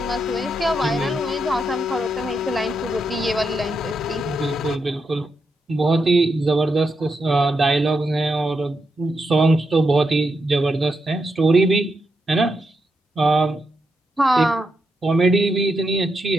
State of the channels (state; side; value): normal; both; correlation 0.83